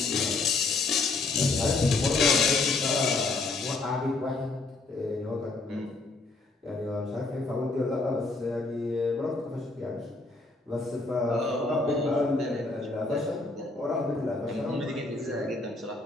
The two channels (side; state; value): right; quieter; 3.5 dB